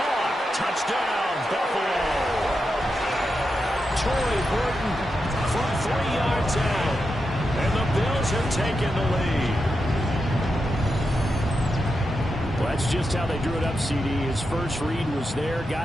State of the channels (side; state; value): both; normal; correlation 0.87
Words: Touchdown, Buffalo. Troy Horton from 3 yards out. And the Bills have taken the lead. Well, that's just how they drew it up, CD. His first read was there,